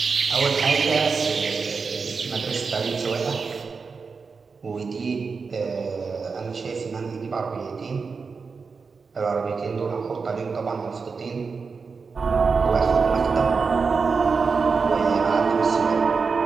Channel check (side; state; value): left; quieter; 4.9 dB